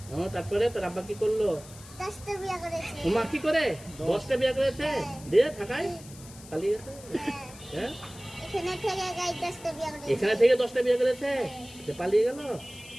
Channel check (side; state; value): left; noise; hiss, 19 dB below the sound